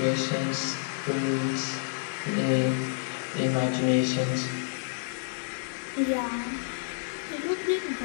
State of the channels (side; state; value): right; silent; 59 dB below the other